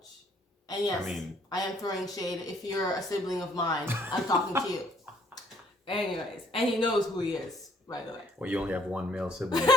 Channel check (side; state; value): both; normal; correlation 0.64